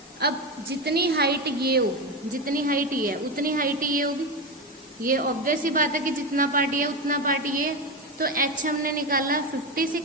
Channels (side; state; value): both; normal; correlation 0.16